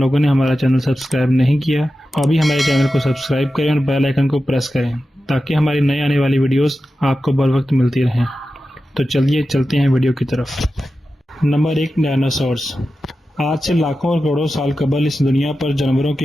نے ہمارا چینل سبسکرائب نہیں کیا تو ابھی ہمارے چینل کو سبسکرائب کریں اور بیل آئیکن کو پریس کریں تاکہ ہماری نئی آنے والی ویڈیوز آپ کو بر وقت ملتی رہیں۔ تو چلیے چلتے ہیں ویڈیو کی طرف۔ Number 1، dinosaurs. آج سے لاکھوں اور کروڑوں سال قبل اس دنیا پر جانوروں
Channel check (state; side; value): normal; both; correlation 0.92